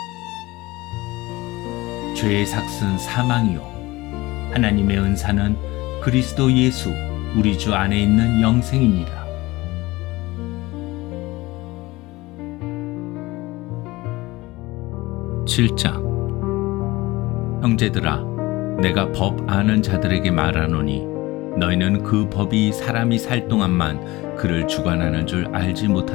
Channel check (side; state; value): right; quieter; 20.4 dB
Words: 죄의 삭은 사망이요 하나님의 은사는 그리스도 예수 우리 주 안에 있는 영생이니라. 형제들아, 내가 법 아는 자들에게 말하노니 너희는 그 법이 사람이 살 동안만 그를 주관하는 줄 알지